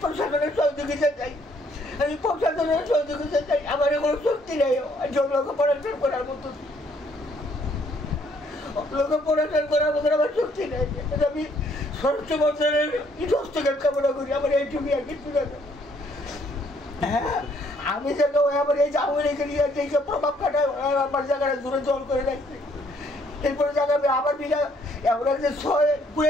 প্রশাসনের সহযোগিতা চাই আমি প্রশাসনের সহযোগিতা চাই আমার কোনো শক্তি নেই লোকে পড়াশোনা করার মতো লোকে পড়াশোনা করার মতো আমার শক্তি নেই আমি স্বরাষ্ট্র মন্ত্রণালয়ের হস্তক্ষেপ কামনা করি আমার এইটুকু আর কিছু না হ্যাঁ আমি যাকে আমার এই আমার এখানে যে প্রভাব খাটায় আমার জায়গাটা দূরে জল করে রাখছে এরপরে জায়গা আবার বিনা এমন একটা পুরো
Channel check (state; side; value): normal; both; correlation 0.66